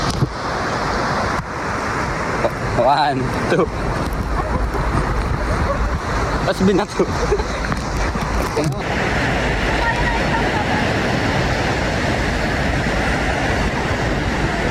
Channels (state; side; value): identical; both; correlation 1.00